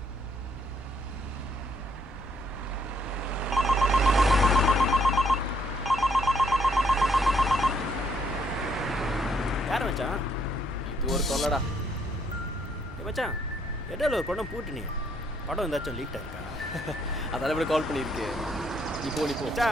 யார் மச்சான்? இது ஒரு தொல்லடா. மச்சான் இடையில ஒரு படம் பூட்டினீங்க. படம் ஏதாச்சும் லீக் ஆயிருக்கா? அதால இப்படி கால் பண்ணியிருக்கு. நீ போ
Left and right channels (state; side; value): normal; both; correlation 0.70